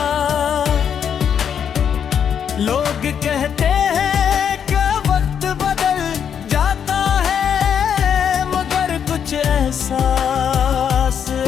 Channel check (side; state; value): right; quieter; 8.0 dB